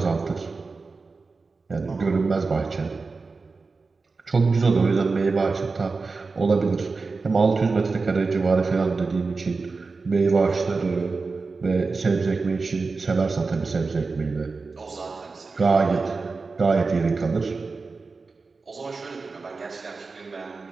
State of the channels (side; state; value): left; quieter; 4.2 dB